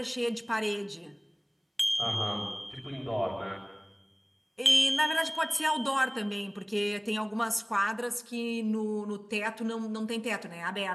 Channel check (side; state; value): both; identical; correlation 1.00